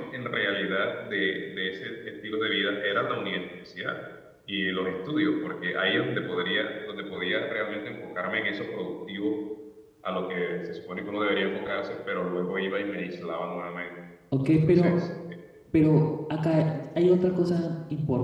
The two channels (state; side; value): identical; both; correlation 1.00